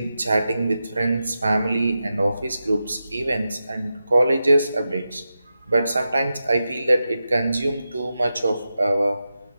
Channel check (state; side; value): inverted; both; correlation -0.90